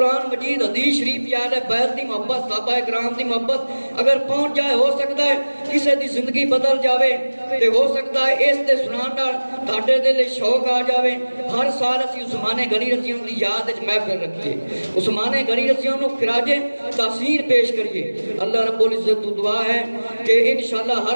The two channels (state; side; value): inverted; both; correlation -1.00